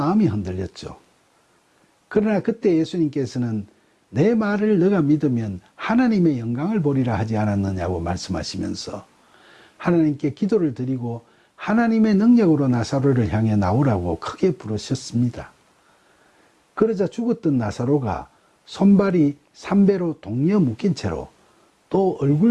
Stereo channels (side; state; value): both; identical; correlation 1.00